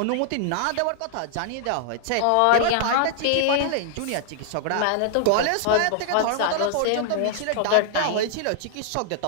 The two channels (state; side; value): different; both; correlation -0.01